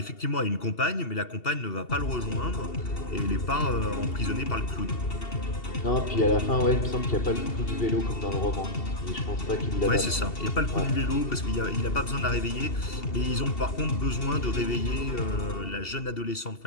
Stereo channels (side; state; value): right; late; 2.7 ms